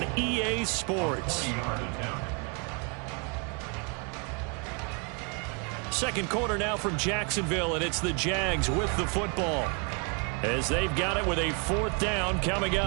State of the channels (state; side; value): quieter; left; 34.8 dB